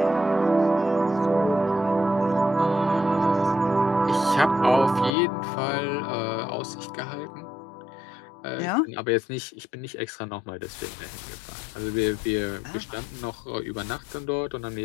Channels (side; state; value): right; drops out; at 5.1 s